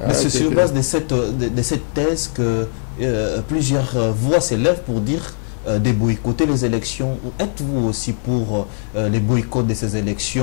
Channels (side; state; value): right; silent; 66 dB below the other